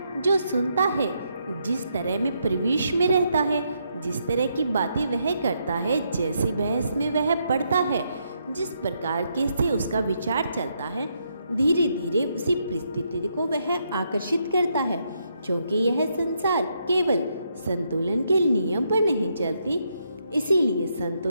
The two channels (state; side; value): inverted; both; correlation -0.78